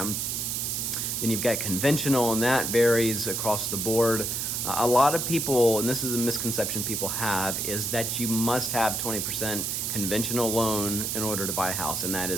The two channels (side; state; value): right; noise; hiss, 1 dB below the sound